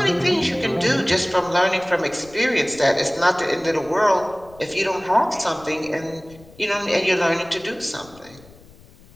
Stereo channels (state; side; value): noise; left; rumble, 24 dB below the sound